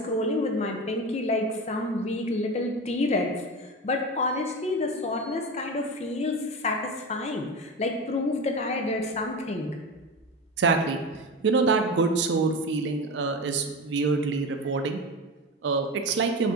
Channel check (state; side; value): normal; both; correlation 0.24